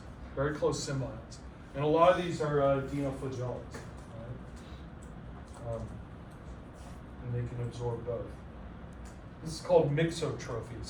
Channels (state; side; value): identical; both; correlation 1.00